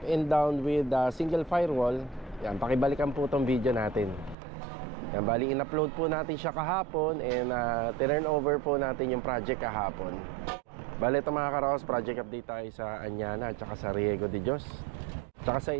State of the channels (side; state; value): left; drops out; at 4.4 s